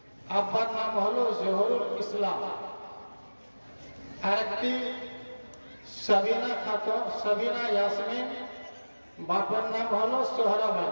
আব্বার নাম হলো জহুরুল ইসলাম। আরেকটি সাবিনা খাতুন, সাবিনা ইয়াসমিন, বাবার নাম হলো সোহরাব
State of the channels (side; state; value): both; inverted; correlation -1.00